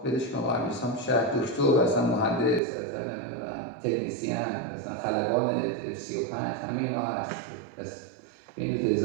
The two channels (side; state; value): left; drops out; at 2.6 s